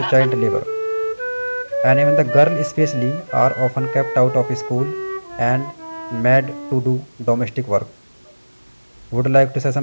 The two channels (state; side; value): inverted; both; correlation -1.00